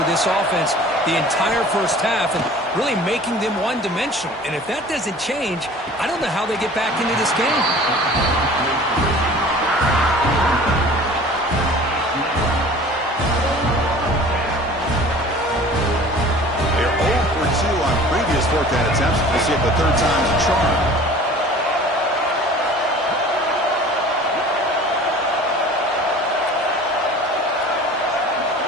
this offense the entire first half and really making them one-dimensional. And if that doesn't change, I don't know how they get back into this game. They're 0 for 2 on previous 4th down attempts. We'll see if the 3rd time's a charm.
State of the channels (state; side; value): normal; both; correlation 0.45